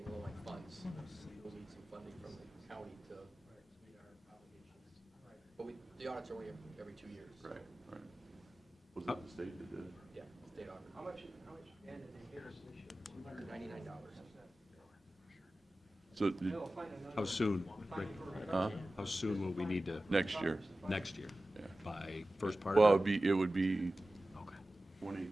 low on funds. We will need some funding from the county to meet our obligations. Right. But the audits are only every 2 years. Right, right. Was it the state that did it? Yeah, state audit. How much, Dan, did they give us this year? $299. So, They'll find another- How soon, Rick? huh? How soon will we need to, Next year, next year? yeah. By first part Well, of it would be Okay.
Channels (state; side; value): normal; both; correlation 0.96